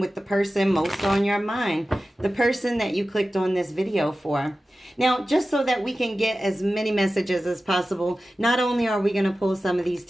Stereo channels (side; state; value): both; normal; correlation 0.95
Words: the person most on your mind, the person that you clicked on this video for. Now, just so that we can get as many messages as possible, not only are we going to pull some of these